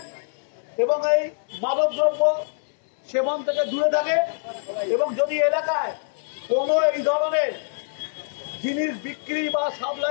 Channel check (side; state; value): right; silent; digital silence